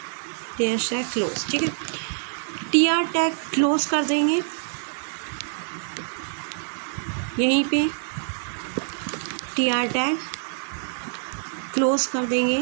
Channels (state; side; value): silent; left; digital silence